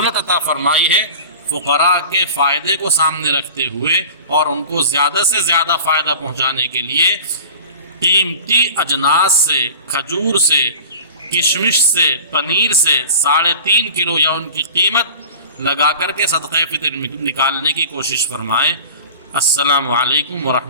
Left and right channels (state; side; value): inverted; both; correlation -0.38